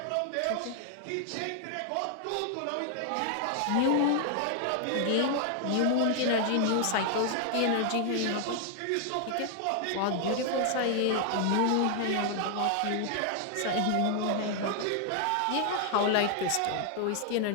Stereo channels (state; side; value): different; both; correlation 0.00